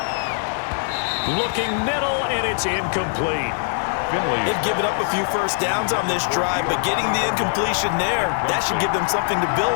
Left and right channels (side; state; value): right; silent; digital silence